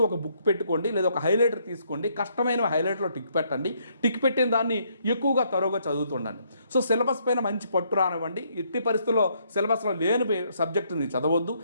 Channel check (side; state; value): both; inverted; correlation -0.70